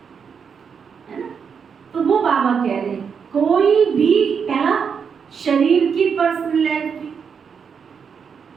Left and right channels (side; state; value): left; quieter; 6.5 dB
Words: ना। तो वो बाबा कह रहे हैं, कोई भी पहला शरीर की पर्सनैलिटी,